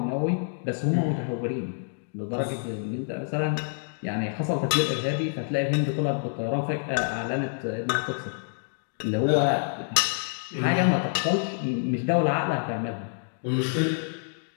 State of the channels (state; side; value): silent; right; digital silence